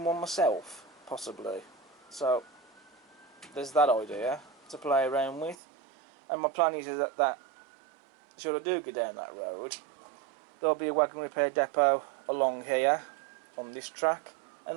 one myself, possibly. So there's that idea to play around with. And my plan is that should I do go down that road, there'll be a wagon repair depot along here on this track, and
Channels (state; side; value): drops out; left; at 5.6 s